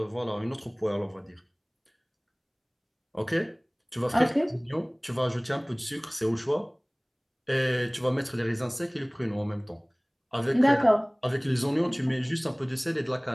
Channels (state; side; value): identical; both; correlation 1.00